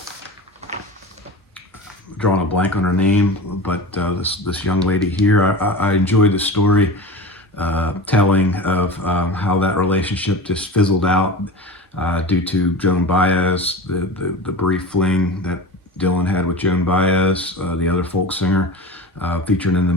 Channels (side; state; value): both; normal; correlation 0.31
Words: drawing a blank on her name, but this young lady here. I enjoyed the story telling of how that relationship just fizzled out due to Joan Baez, the brief fling that Dylan had with Joan Baez, the other folk singer featured in the